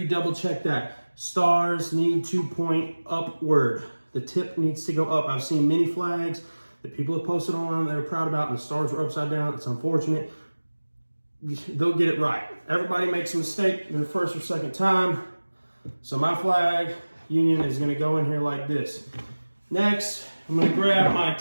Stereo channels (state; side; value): inverted; both; correlation -1.00